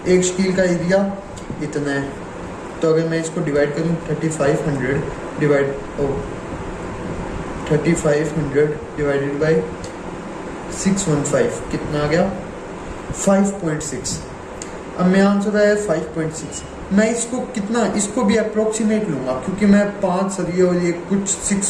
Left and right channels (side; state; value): both; identical; correlation 1.00